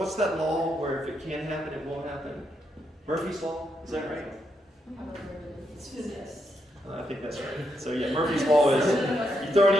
that law where if it can happen, it will happen? Murphy's law, is that right? It's physics. I think that's right. So yeah, Murphy's law is you throw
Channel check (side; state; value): both; normal; correlation 0.80